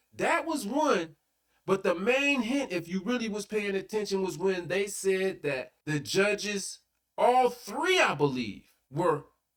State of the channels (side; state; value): both; identical; correlation 1.00